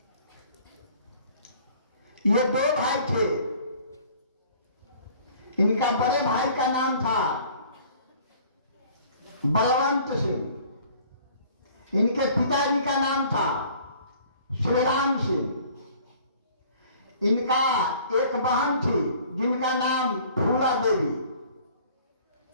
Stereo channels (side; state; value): both; inverted; correlation -0.53